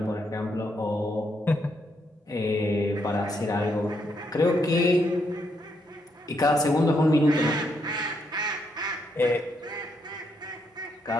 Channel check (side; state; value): both; normal; correlation 0.77